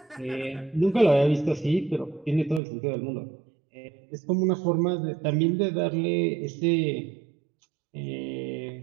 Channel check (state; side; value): drops out; left; at 2.6 s